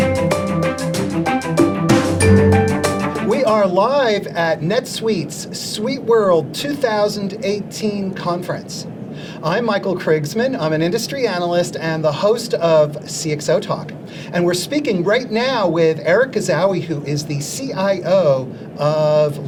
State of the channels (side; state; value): both; identical; correlation 1.00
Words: are live at NetSuite's Suite World 2018 conference. I'm Michael Krigsman. I'm an industry analyst and the host of CXOTalk. And we're speaking right now with Erich Gazaui, who is the CIO of